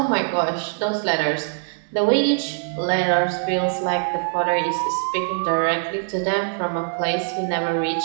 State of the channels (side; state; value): left; silent; digital silence